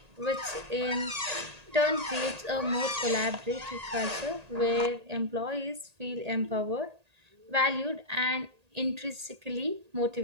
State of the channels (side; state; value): left; late; 1.8 ms